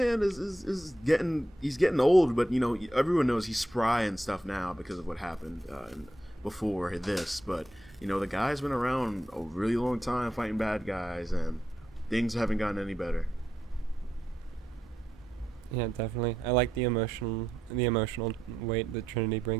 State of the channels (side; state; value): both; normal; correlation 0.83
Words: is getting old, but everyone knows he's spry and stuff now because of what happened before this. But the guy's been around a really long time fighting bad guys, and things haven't gotten any better. Yeah, definitely. I like the emotional weight that Trinity